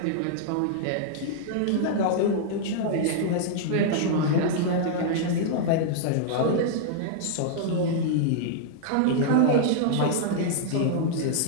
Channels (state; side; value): different; both; correlation -0.01